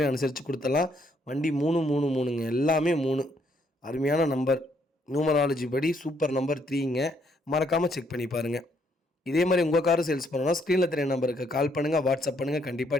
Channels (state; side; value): normal; both; correlation 0.71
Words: அனுசரித்து கொடுத்துடலாம். வண்டி 333ங்க. எல்லாமே 3. அருமையான நம்பர். நியூமராலஜி படி சூப்பர் நம்பர் 3ங்க. மறக்காமல் செக் பண்ணி பாருங்கள். இதே மாதிரி உங்கள் காரும் சேல்ஸ் பண்ணணும்னா ஸ்க்ரீனில் தெரிய நம்பருக்கு கால் பண்ணுங்கள், வாட்ஸ்அப் பண்ணுங்கள். கண்டிப்பாக